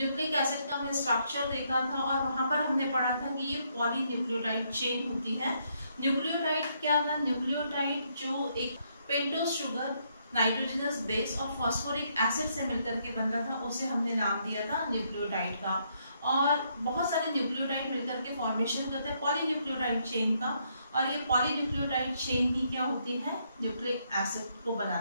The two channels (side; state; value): both; inverted; correlation -0.74